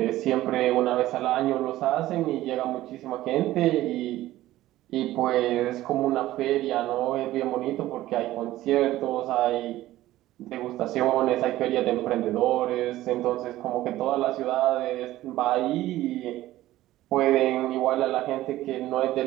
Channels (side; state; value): left; quieter; 15.5 dB